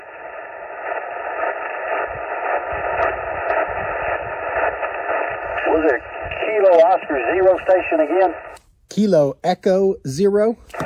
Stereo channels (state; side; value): identical; both; correlation 1.00